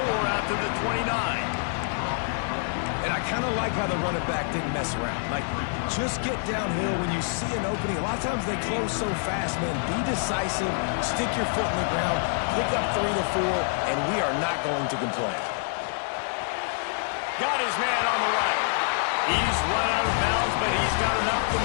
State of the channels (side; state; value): right; silent; 61 dB below the other